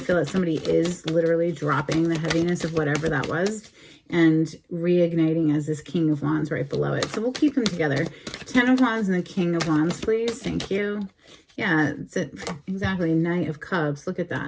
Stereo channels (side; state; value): both; identical; correlation 1.00